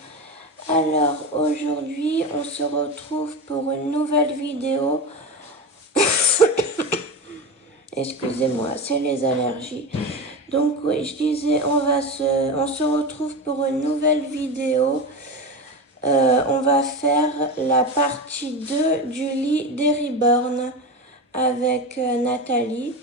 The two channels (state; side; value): normal; both; correlation 0.22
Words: Alors aujourd'hui on se retrouve pour une nouvelle vidéo. Excusez-moi, c'est les allergies. Donc oui, je disais, on se retrouve pour une nouvelle vidéo. On va faire la partie 2 du lit des Reborn avec Nathalie.